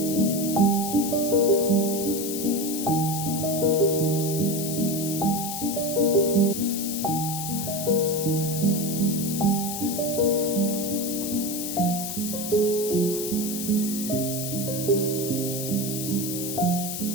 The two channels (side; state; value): left; noise; hiss, 5 dB below the sound